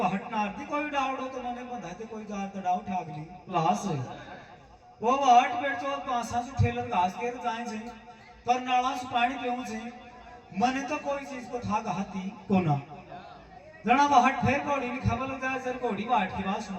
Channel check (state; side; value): identical; both; correlation 1.00